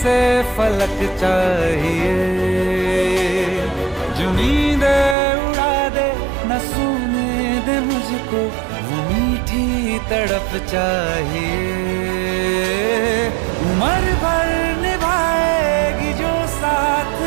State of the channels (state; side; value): drops out; left; at 5.2 s